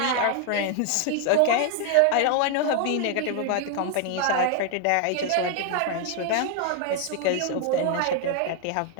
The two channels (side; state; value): both; different; correlation 0.00